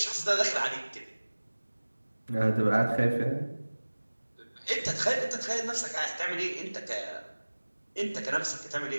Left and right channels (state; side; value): inverted; both; correlation -1.00